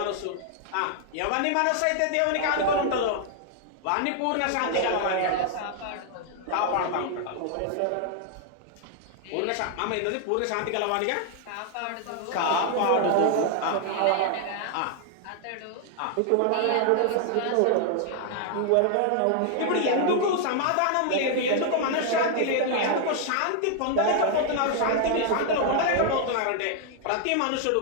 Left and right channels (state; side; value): different; both; correlation 0.00